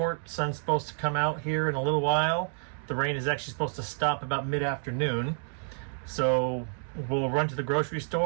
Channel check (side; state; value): left; silent; 58 dB below the other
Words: sun's supposed to come out here in a little while. The rain is actually supposed to stop about mid-afternoon. So we'll run to the grocery